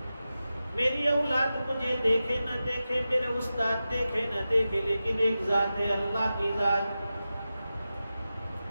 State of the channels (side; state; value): both; inverted; correlation -0.93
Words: میری اولاد مجھے دیکھے نہ دیکھے، میرے استاد دیکھے نہ دیکھے، لیکن ایک ذات ہے، اللہ کی ذات۔